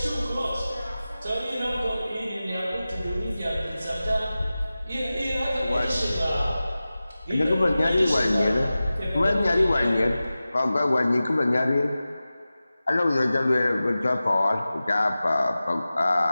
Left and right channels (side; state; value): both; inverted; correlation -0.96